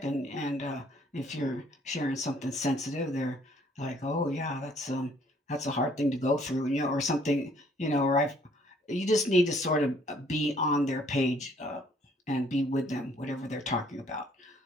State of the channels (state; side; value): normal; both; correlation 0.62